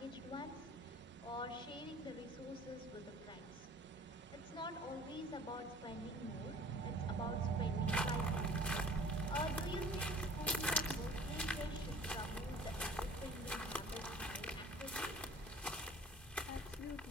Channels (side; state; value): both; normal; correlation 0.48